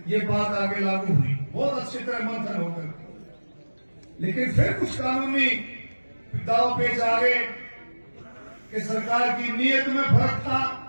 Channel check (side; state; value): both; inverted; correlation -1.00